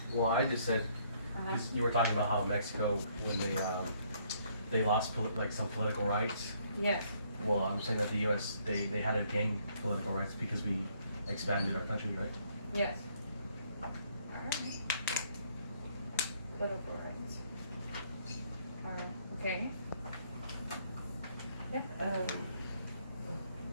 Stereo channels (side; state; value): both; inverted; correlation -0.67